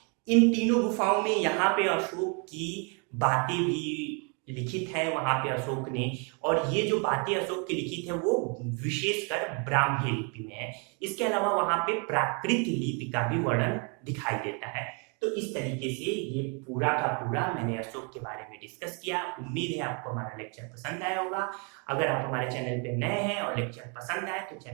इन तीनों गुफाओं में यहाँ पे अशोक की बातें भी लिखित है वहां पे अशोक ने, और ये जो बातें अशोक की लिखित है वो विशेषकर ब्राह्मी लिपि में है। इसके अलावा वहां पे प्राकृत लिपि का भी वर्णन दिखाई देता है। तो इस तरीके से ये पूरा का पूरा मैंने अशोक के बारे में डिस्कस किया। उम्मीद है आपको हमारा लेक्चर पसंद आया होगा। अगर आप हमारे चैनल पे नए हैं और लेक्चर पसंद आए तो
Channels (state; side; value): quieter; left; 35.2 dB